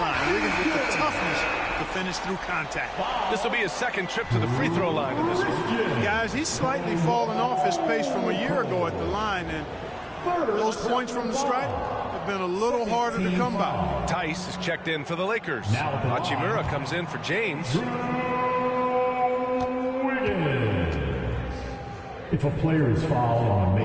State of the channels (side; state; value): both; identical; correlation 1.00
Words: Wiggins with the toughness to finish through contact. This will be his second trip to the free throw line in this one. Guys, he's slightly fallen off his pace from a year ago at the line, and those points from the stripe have been a little harder to come by. Tice is checked in for the Lakers. Hachimura comes in for James. If a player is fouled on a